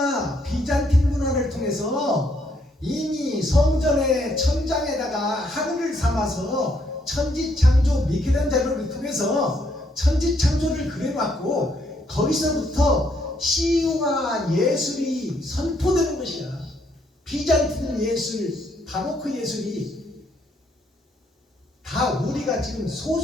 비잔틴 문화를 통해서 이미 성전의 천장에다가 하늘을 삼아서 천지창조 미켈란젤로를 통해서 천지창조를 그려놨고 거기서부터 시와 예술이 선포되는 것이야. 비잔틴 예술, 바로크 예술이 다 우리가 지금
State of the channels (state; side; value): normal; both; correlation 0.72